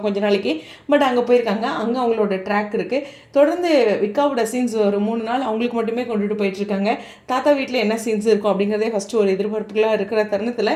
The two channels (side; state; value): both; identical; correlation 1.00